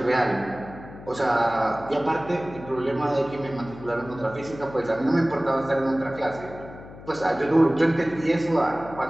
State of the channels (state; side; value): noise; left; hum, 16 dB below the sound